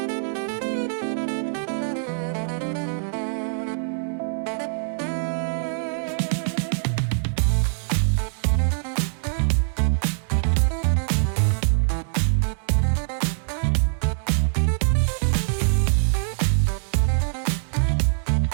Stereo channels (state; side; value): silent; left; digital silence